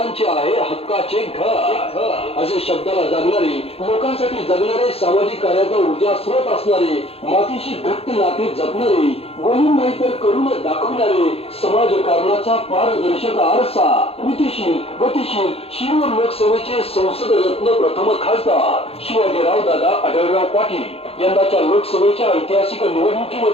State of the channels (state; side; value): late; right; 0.28 ms